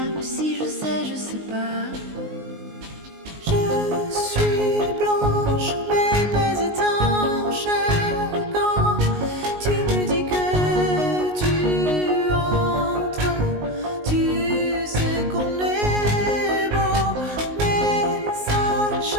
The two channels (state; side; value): late; left; 19 ms